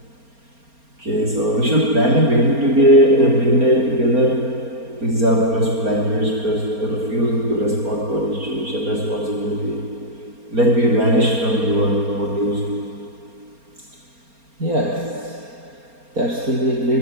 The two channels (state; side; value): late; left; 4.3 ms